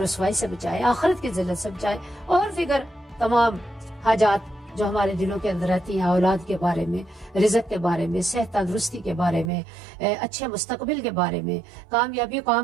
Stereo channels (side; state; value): left; drops out; at 9.5 s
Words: رسوائی سے بچائے، آخرت کی ذلت سے بچائے، اور دیگر تمام حاجات جو ہمارے دلوں کے اندر رہتی ہیں، اولاد کے بارے میں، رزق کے بارے میں، صحت تندرستی کے بارے میں، اچھے مستقبل کے بارے میں، کامیابی